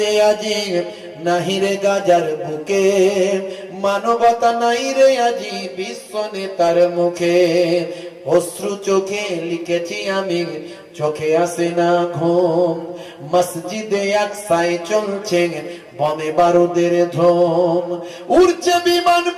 আজি, নাহি রে গাজার বুকে, মানবতা নাই রে আজি বিশ্ব নেতার মুখে। অশ্রু চোখে লিখেছি আমি, চোখে আসে না ঘুম, মসজিদে আকসায় চলছে বোমে বারুদের ধুম। উড়ছে বিমান,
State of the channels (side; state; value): both; identical; correlation 1.00